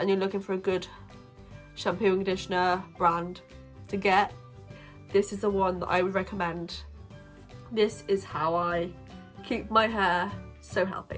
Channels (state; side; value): identical; both; correlation 1.00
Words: you're looking for a good shampoo and conditioner brand to get, this is the one that I would recommend. This is how I keep my hair so